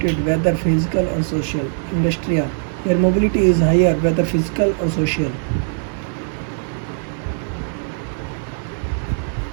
whether physical or social. Industria, where mobility is higher, whether physical or social.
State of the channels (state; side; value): silent; left; digital silence